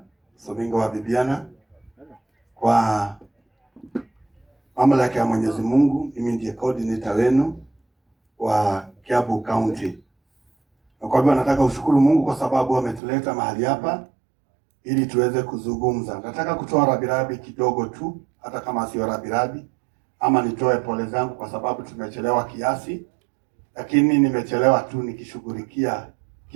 wa Bibiana. Kwa mamlaka ya Mwenyezi Mungu, mimi ndiye coordinator wenu wa Kiambu County. Na kwa hivyo nataka ushukuru Mungu kwa sababu ametuleta mahali hapa ili tuweze kuzungumza. Nataka kutoa rabirabi kidogo tu, hata kama sio rabirabi, ama nitoe pole zangu kwa sababu tumechelewa kiasi, lakini nimechelewa tu nikishughulikia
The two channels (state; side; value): drops out; left; at 13.0 s